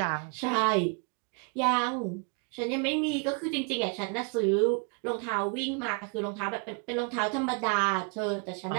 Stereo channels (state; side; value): quieter; left; 37.8 dB